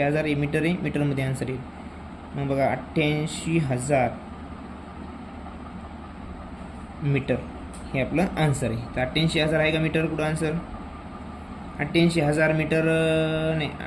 हे मीटर आहे. मीटरमध्ये आन्सर येईल. मग बघा 88,000 मीटर हे आपलं आन्सर आहे. तर 88,000 आहे का मीटर कुठं आन्सर 88,000 मीटर नाही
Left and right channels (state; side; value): identical; both; correlation 1.00